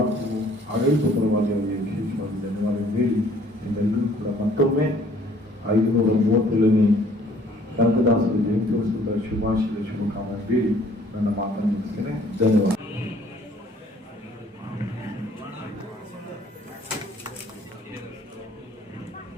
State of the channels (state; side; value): normal; both; correlation 0.58